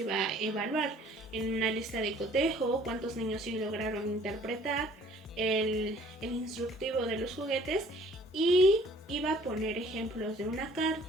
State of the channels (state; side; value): normal; both; correlation 0.55